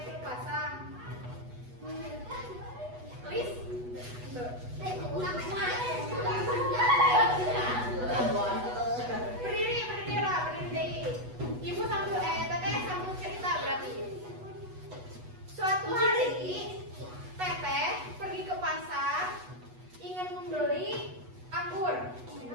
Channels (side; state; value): left; late; 8.1 ms